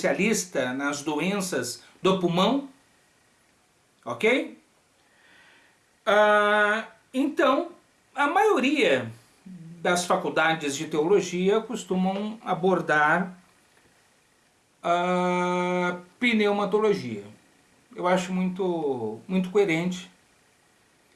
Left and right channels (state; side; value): identical; both; correlation 1.00